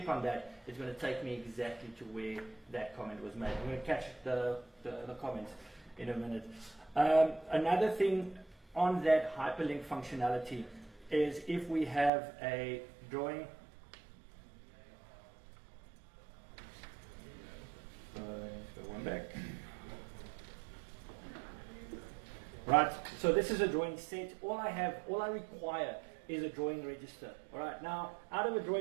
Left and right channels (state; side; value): drops out; left; at 12.1 s